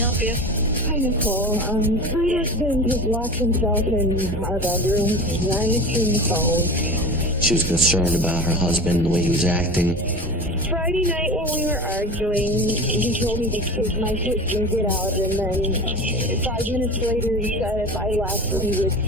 you? Hi, Nicole. My husband has locked himself in our bedroom. He's not answering the phone. She was concerned about her husband and the way he was acting. Friday night when we were arguing, he told me to take my sister and get out, and then 5 minutes later he said if I left he would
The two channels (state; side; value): normal; both; correlation 0.32